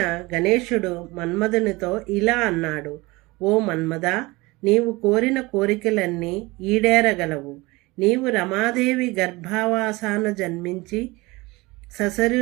గణేశుడు మన్మధునితో ఇలా అన్నాడు: ఓ మన్మథ, నీవు కోరిన కోరికలన్నీ ఈడేరగలవు. నీవు రమాదేవి గర్భావాసాన జన్మించి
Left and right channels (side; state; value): left; quieter; 22.5 dB